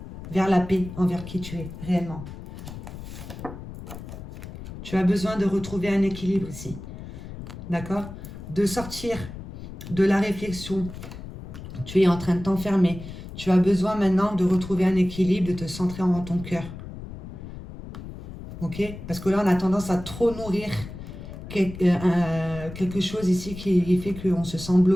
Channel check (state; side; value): noise; left; rumble, 12 dB below the sound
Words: Vers la paix envers qui tu es réellement. Tu as besoin de retrouver un équilibre ici. D'accord? De sortir de la réflexion. Tu es en train de t'enfermer. Tu as besoin maintenant de retrouver un équilibre, de te centrer en ton cœur. Ok? Parce que là, on a tendance à trop nourrir quelque chose ici qui fait qu'on se sent